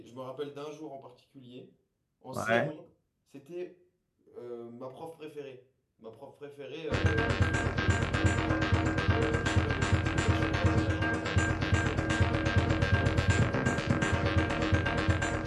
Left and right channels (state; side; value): identical; both; correlation 1.00